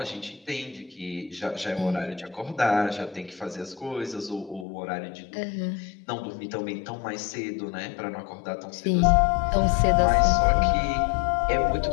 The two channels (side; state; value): right; drops out; at 4.7 s